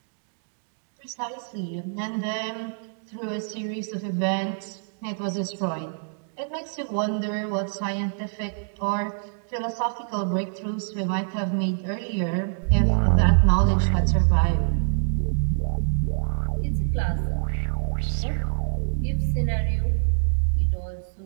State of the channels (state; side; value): silent; left; digital silence